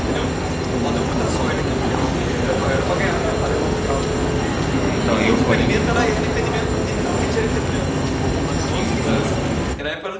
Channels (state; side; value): identical; both; correlation 1.00